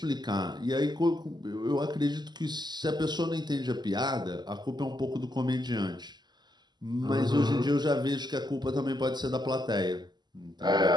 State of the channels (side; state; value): left; late; 0.21 ms